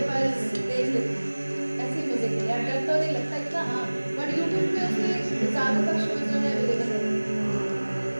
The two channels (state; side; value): inverted; both; correlation -1.00